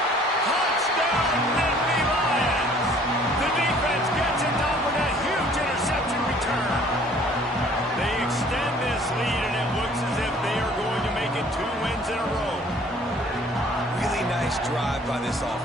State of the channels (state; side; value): normal; both; correlation 0.55